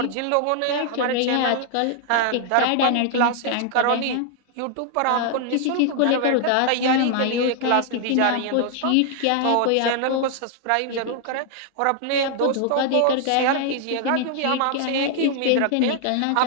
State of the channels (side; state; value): both; different; correlation 0.00